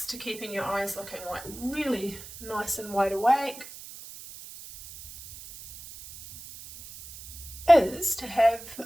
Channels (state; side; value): noise; right; hiss, 15 dB below the sound